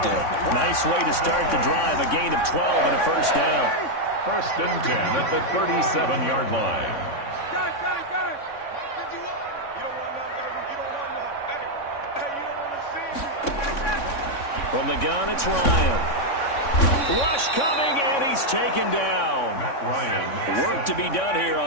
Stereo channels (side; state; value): right; late; 3.6 ms